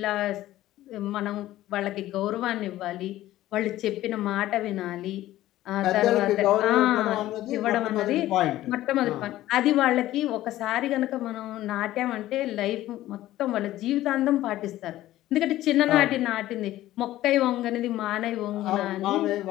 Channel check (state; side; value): quieter; right; 14.8 dB